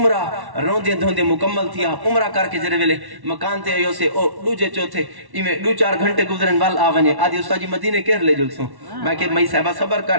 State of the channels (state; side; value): late; left; 1.1 ms